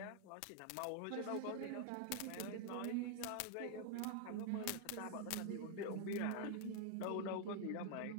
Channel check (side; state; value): both; different; correlation 0.00